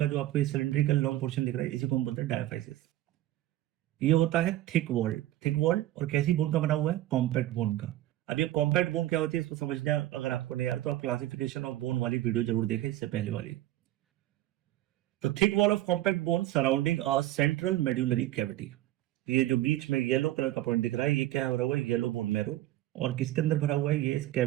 जो आपको ये सिलेंड्रिकल लॉन्ग पोर्शन दिख रहा है इसी को हम बोलते हैं डायाफाइसिस। ये होता है थिक वॉल। थिक वॉल और कैसी बोन का बना हुआ है, कॉम्पैक्ट बोन का। अब ये कॉम्पैक्ट बोन क्या होती है इसको समझना अगर आपको नहीं आ रहा तो आप क्लासिफिकेशन ऑफ बोन वाली वीडियो जरूर देखें, इससे पहले वाली। तो thick wall of compact bone surrounding a central medullary cavity. ये जो बीच में येलो कलर का पॉइंट दिख रहा है ये क्या भरा हुआ है, येलो बोन मैरो। और किसके अंदर भरा हुआ है, ये इस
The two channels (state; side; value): quieter; left; 14.9 dB